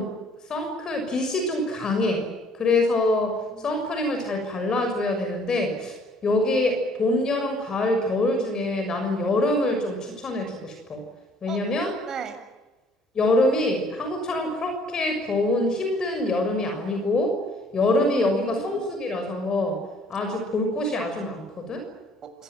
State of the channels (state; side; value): normal; both; correlation 0.59